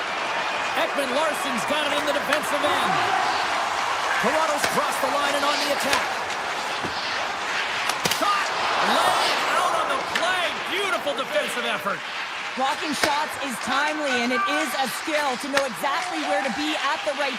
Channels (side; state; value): both; identical; correlation 1.00